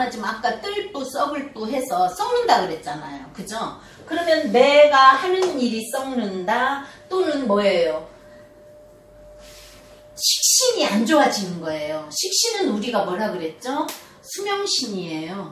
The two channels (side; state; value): both; identical; correlation 1.00